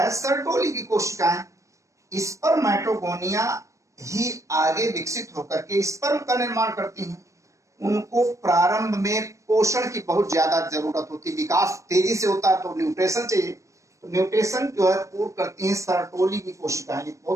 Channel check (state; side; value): late; left; 0.15 ms